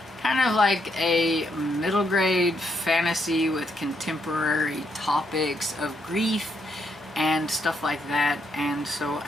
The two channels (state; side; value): normal; both; correlation 0.76